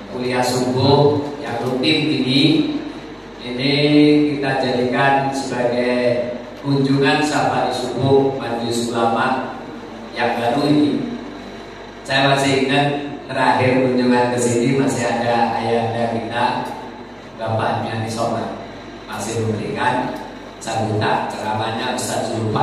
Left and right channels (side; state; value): both; identical; correlation 1.00